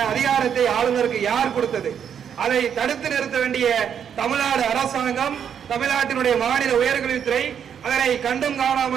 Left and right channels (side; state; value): left; quieter; 8.2 dB